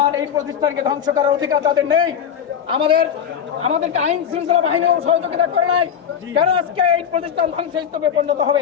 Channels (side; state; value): right; quieter; 8.3 dB